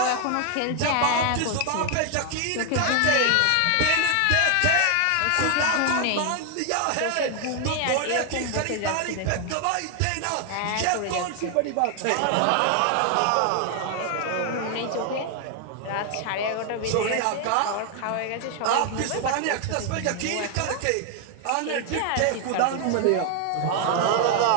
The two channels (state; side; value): different; both; correlation 0.00